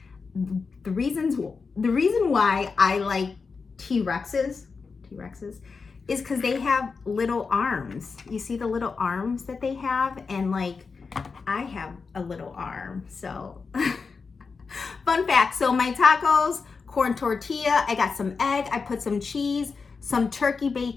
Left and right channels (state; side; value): quieter; right; 4.9 dB